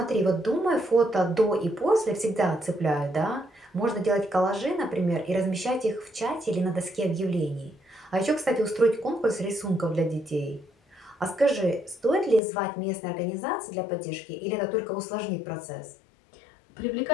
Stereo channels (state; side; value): drops out; right; at 12.4 s